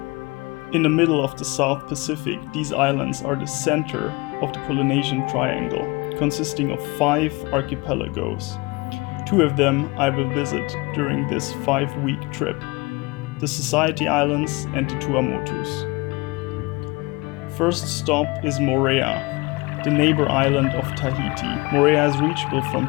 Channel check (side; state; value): right; quieter; 25.0 dB